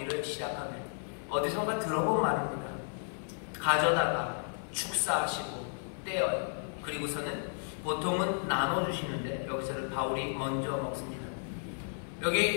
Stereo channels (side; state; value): right; silent; 56 dB below the other